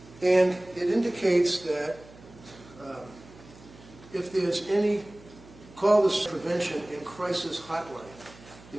And it indicates that if there's any, call this prevention and crisis hotline.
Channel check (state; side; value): noise; right; hum, 22 dB below the sound